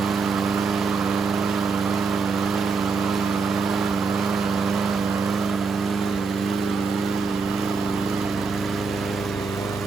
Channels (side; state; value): left; quieter; 4.9 dB